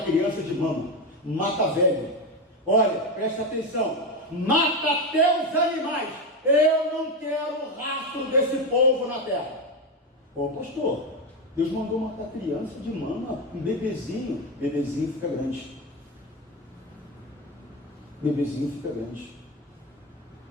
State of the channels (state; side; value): normal; both; correlation 0.14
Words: criança de mama, mata velho. Olha, presta atenção, mata até os animais. Eu não quero rastro desse povo na terra. Ô pastor, Deus mandou matar criança de mama, um bebezinho fica grande. Bebezinho fica grande.